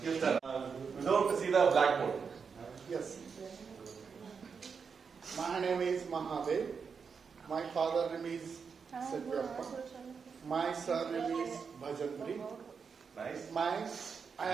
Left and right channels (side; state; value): left; quieter; 5.8 dB